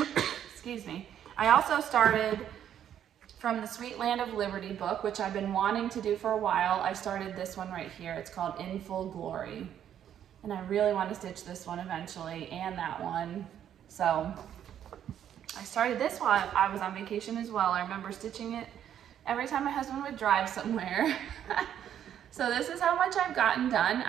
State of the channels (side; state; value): left; quieter; 10.0 dB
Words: me, I also started from the Sweet Land of Liberty book, which I've been wanting to do for a while. I started this one right here. It's called In Full Glory. And I really want to stitch this one eventually, and that one. So I started this while I was on vacation as well. I remember stitching it every time my husband would drive somewhere. So this is how much I've gotten done.